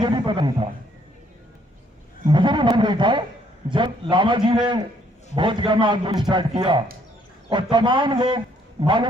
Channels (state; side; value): normal; both; correlation 0.67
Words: भी पता नहीं था, मुझे भी मालूम नहीं था। जब लामा जी ने बहुत जगह में आंदोलन स्टार्ट किया और तमाम लोग